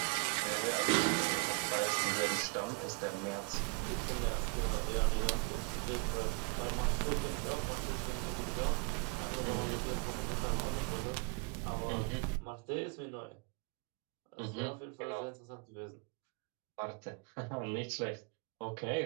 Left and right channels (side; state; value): left; quieter; 29.4 dB